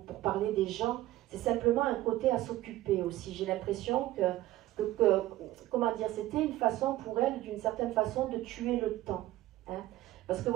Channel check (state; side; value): quieter; left; 15.8 dB